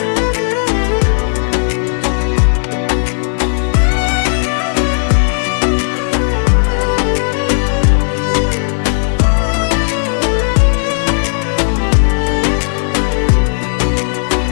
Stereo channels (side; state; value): right; silent; 71 dB below the other